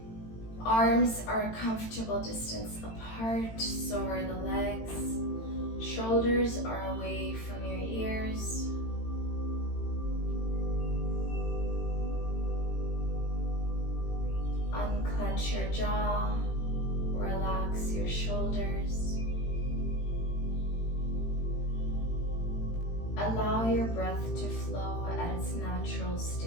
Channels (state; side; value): late; right; 18 ms